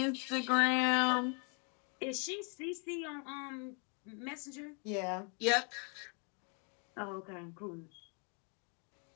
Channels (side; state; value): right; quieter; 37.7 dB